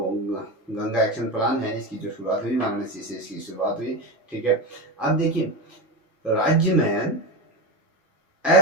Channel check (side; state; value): both; normal; correlation 0.18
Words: गंगा एक्शन प्लान है इसकी जो शुरुआत हुई वाराणसी से इसकी शुरुआत हुई। ठीक है, अब देखिए राज्य में